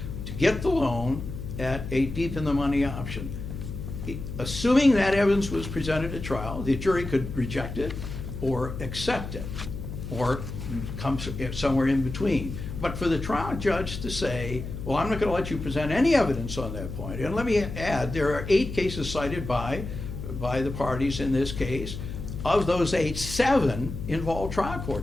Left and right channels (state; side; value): noise; left; hum, 7 dB below the sound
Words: to get the loan at a deep in the money option. Assuming that evidence was presented at trial, the jury could reject it or accept it or come somewhere in between. But for the trial judge to say, well, I'm not going to let you present any evidence on that point. And let me add, there are 8 cases cited by the parties in this case. Of those 8, 7 involve trial